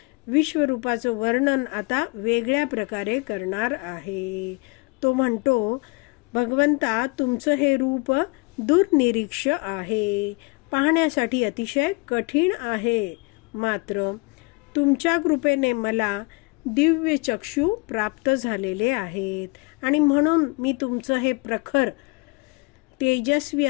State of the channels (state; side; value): quieter; right; 28.4 dB